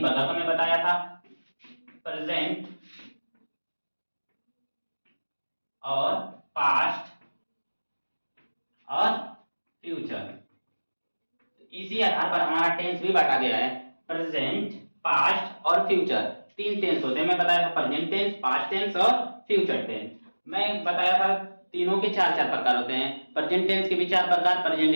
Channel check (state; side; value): inverted; both; correlation -1.00